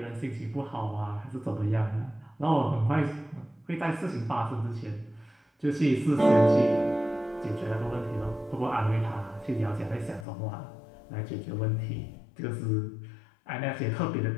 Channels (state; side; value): drops out; right; at 10.2 s